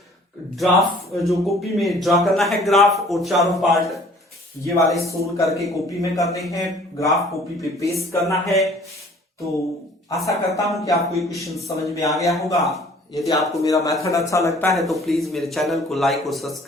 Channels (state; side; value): normal; both; correlation 0.53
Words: ड्राफ्ट जो कॉपी में ड्रा करना है ग्राफ, और चारों पार्ट ये वाले सोल्व करके कॉपी में करने हैं, ग्राफ कॉपी पे पेस्ट करना है। तो आशा करता हूं कि आपको ये क्वेश्चन समझ में आ गया होगा। यदि आपको मेरा मेथड अच्छा लगता है तो प्लीज मेरे चैनल को लाइक और